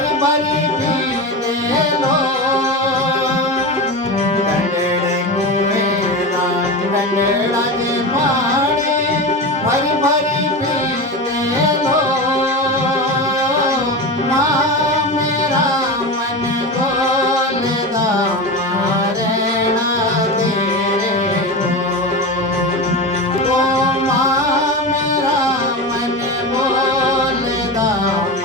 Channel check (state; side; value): normal; both; correlation 0.23